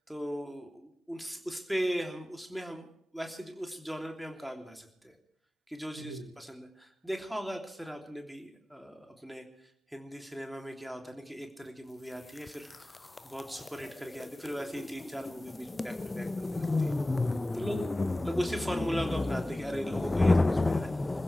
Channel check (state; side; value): normal; both; correlation 0.97